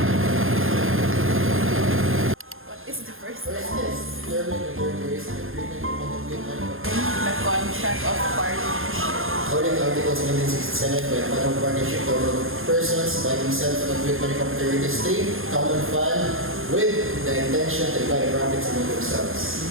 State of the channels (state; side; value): late; left; 0.60 ms